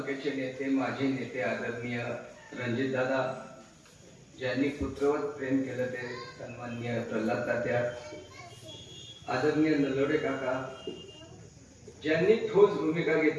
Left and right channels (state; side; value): identical; both; correlation 1.00